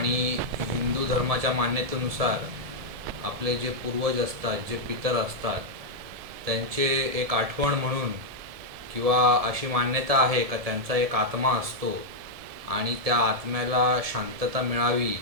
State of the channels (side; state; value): left; late; 1.7 ms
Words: हिंदू धर्माच्या मान्यतेनुसार आपले जे पूर्वज असतात, जे पितर असतात, त्यांचे एक आठवण म्हणून किंवा अशी मान्यता आहे का त्यांचा एक आत्मा असतो आणि त्या आत्म्याला शांतता मिळावी